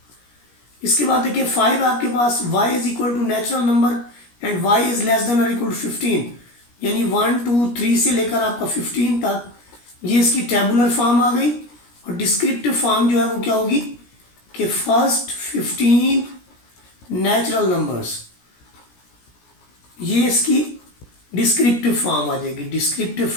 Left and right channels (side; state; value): right; late; 17 ms